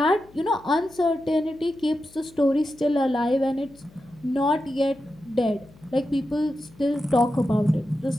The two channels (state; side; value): noise; left; hum, 26 dB below the sound